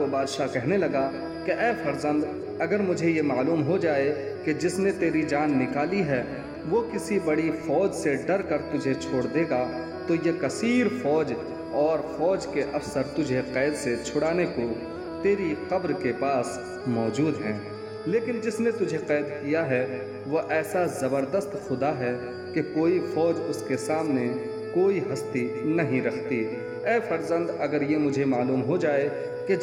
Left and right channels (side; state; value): both; identical; correlation 1.00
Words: بادشاہ کہنے لگا کہ اے فرزند، اگر مجھے یہ معلوم ہو جائے کہ جس نے تیری جان نکالی ہے وہ کسی بڑی فوج سے ڈر کر تجھے چھوڑ دے گا تو یہ کثیر فوج اور فوج کے افسر تجھے قید سے چھڑانے کو تیری قبر کے پاس موجود ہیں، لیکن جس نے تجھے قید کیا ہے وہ ایسا زبردست خدا ہے کہ کوئی فوج اس کے سامنے کوئی ہستی نہیں رکھتی۔ اے فرزند، اگر یہ مجھے معلوم ہو جائے کہ